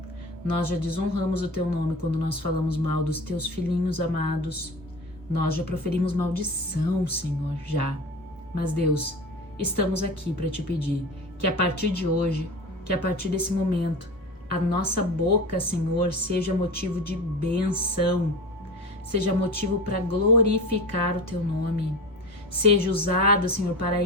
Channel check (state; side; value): normal; both; correlation 0.31